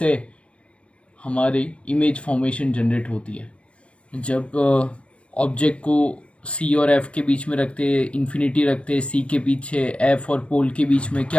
हमारी इमेज फॉर्मेशन जनरेट होती है जब ऑब्जेक्ट को सी और एफ के बीच में रखते, इन्फिनिटी रखते, सी के पीछे एफ और पोल के बीच में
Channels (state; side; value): late; right; 0.061 ms